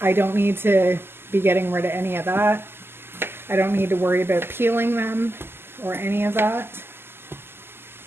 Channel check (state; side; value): late; left; 0.11 ms